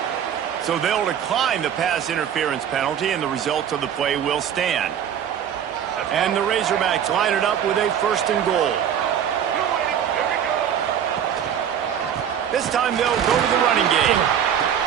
So they'll decline the pass interference penalty, and the results of the play will stand. And the Razorbacks line it up with a 1st and goal. This time they'll go to the running game.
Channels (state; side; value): quieter; left; 9.0 dB